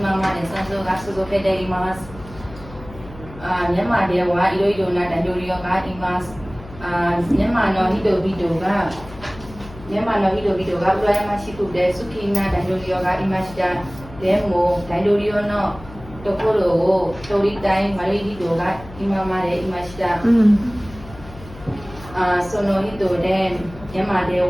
まで戦争が続けています。ミャンマーではいろいろな大統領がいます。ミャンマーの人々が羨ましくて好きな大統領がいました。でも大統領のところを取りたい悪い人が今までいました。その人でミャンマーで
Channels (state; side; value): noise; left; hum, 17 dB below the sound